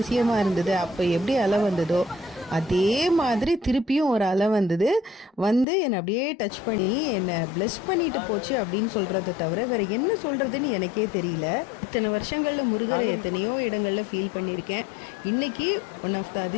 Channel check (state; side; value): drops out; right; at 5.7 s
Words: இருந்தது. அப்போ எப்படி அலை வந்ததோ அதே மாதிரி திருப்பியும் ஒரு அலை வந்தது. வந்து என்னை அப்படியே டச் பண்ணி என்னை ப்ளஸ் பண்ணிட்டு போச்சு அப்படின்னு சொல்கிறத தவிர வேறு என்ன சொல்கிறதுன்னு எனக்கே தெரியல. இத்தனை வருஷங்களில் முருகரை எத்தனையோ இடங்களில் ஃபீல் பண்ணியிருக்கேன். இன்றைக்கி ஒன் ஆஃப் த